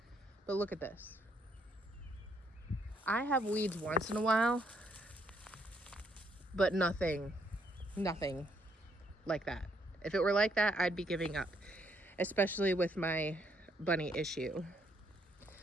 But look at this. I have weeds once in a while, but nothing like that. If it were like that, I'd be giving up, especially with my bunny issue.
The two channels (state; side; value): normal; both; correlation 0.71